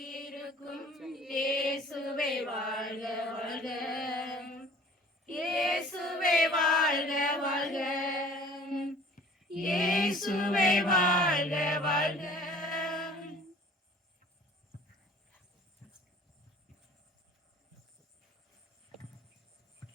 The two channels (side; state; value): both; normal; correlation 0.50